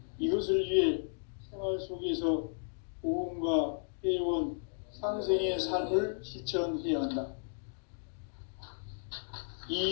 이것을 위해 생활 속에서 보험과 회원, 상생의 삶을 실천해야 한다.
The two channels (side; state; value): right; silent; digital silence